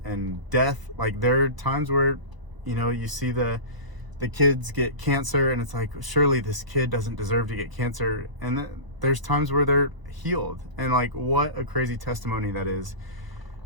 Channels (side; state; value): left; late; 1.0 ms